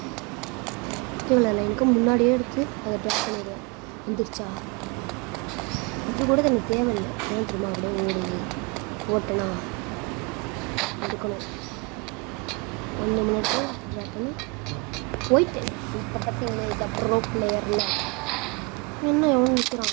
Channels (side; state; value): left; quieter; 30.2 dB